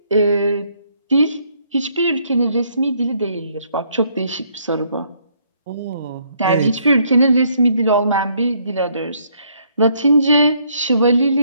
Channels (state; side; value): inverted; both; correlation -0.69